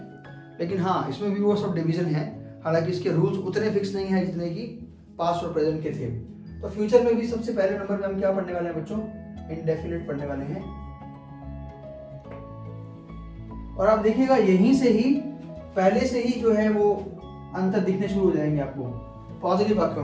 लेकिन हाँ, इसमें भी वो सब डिवीजन है, हालांकि इसके रूल्स उतने फिक्स नहीं है जितने कि पास्ट और प्रेजेंट के थे। तो फ्यूचर में भी सबसे पहले नंबर में हम क्या पढ़ने वाले हैं बच्चों, इंडेफिनिट पढ़ने वाले हैं। और आप देखिएगा यहीं से ही पहले से ही जो है वो अंतर दिखने शुरू हो जाएंगे आपको पॉजिटिव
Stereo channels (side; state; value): both; identical; correlation 1.00